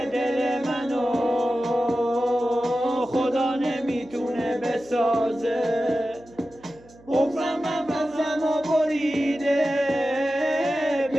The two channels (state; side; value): noise; right; hum, 25 dB below the sound